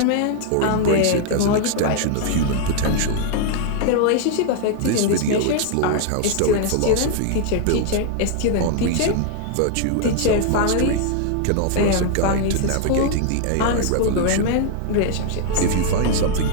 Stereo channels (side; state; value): both; different; correlation 0.00